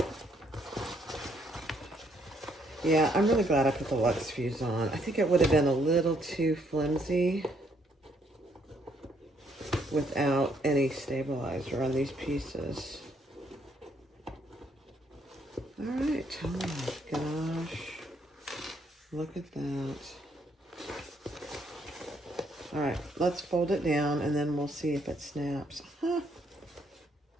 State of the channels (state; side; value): normal; both; correlation 0.70